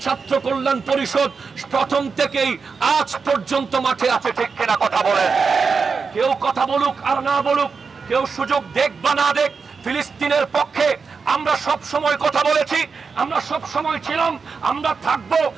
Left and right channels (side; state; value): left; quieter; 5.1 dB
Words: ছাত্র কল্যাণ পরিষদ প্রথম থেকেই আজ পর্যন্ত মাঠে আছে। ঠিক কিনা কথা বলেন? কেউ কথা বলুক আর না বলুক, কেউ সুযোগ দেখ বা না দেখ, ফিলিস্তিনের পক্ষে আমরা সব সময় কথা বলেছি, আমরা সব সময় ছিলাম, আমরা থাকবো।